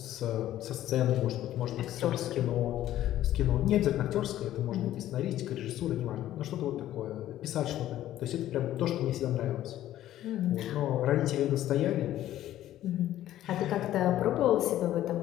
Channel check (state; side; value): quieter; right; 13.1 dB